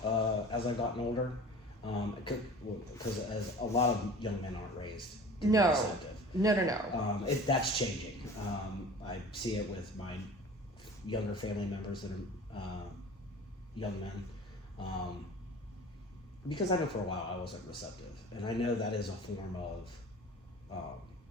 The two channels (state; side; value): normal; both; correlation 0.41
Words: as I've gotten older, because as a lot of young men aren't raised to be receptive. No. That's changing. I see it with my younger family members that are young men, because I know for a while I wasn't receptive, and I know that is a form of